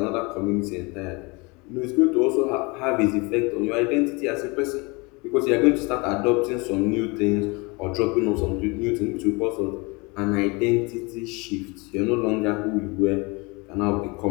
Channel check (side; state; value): right; quieter; 27.1 dB